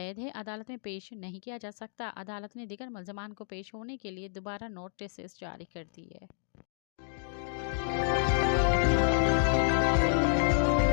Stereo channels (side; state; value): right; silent; digital silence